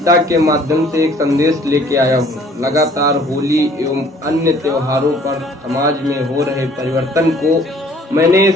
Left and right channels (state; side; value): normal; both; correlation 0.56